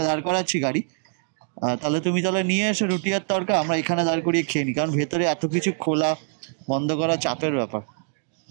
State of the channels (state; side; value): silent; left; digital silence